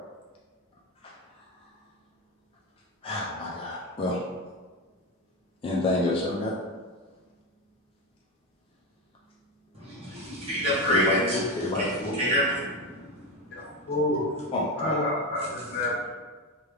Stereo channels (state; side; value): normal; both; correlation 0.16